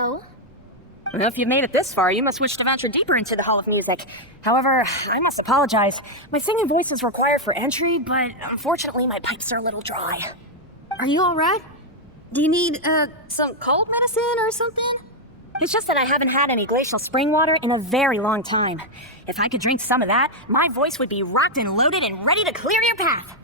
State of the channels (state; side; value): normal; both; correlation 0.00